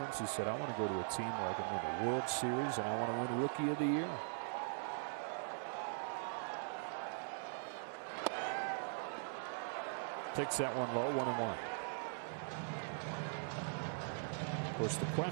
he said, I want to go to a team where I can win the World Series and I want to win Rookie of the Year. Takes that one low, 1-1. Of course, the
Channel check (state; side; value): silent; left; 50 dB below the other